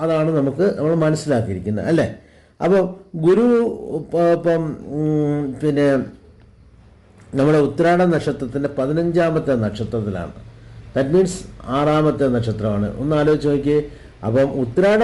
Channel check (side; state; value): both; identical; correlation 1.00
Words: അതാണ് നമ്മൾ മനസ്സിലാക്കിയിരിക്കുന്നത് അല്ലേ. അപ്പോൾ ഗുരു ഇപ്പം പിന്നെ നമ്മുടെ ഉത്രാട നക്ഷത്രത്തിൻ്റെ 15ാമത്തെ നക്ഷത്രത്തിലാണ്. ദാറ്റ് മീൻസ് 6ാമത്തെ നക്ഷത്രമാണ്. ഒന്ന് ആലോചിച്ച് നോക്കിയേ. അപ്പം ഉത്രാട